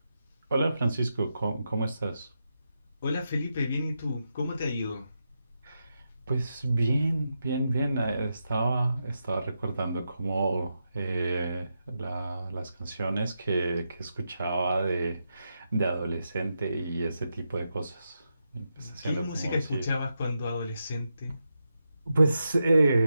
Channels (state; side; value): inverted; both; correlation -0.86